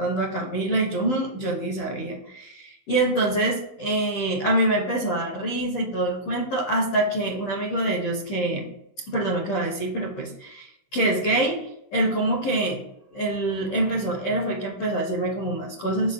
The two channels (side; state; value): right; late; 15 ms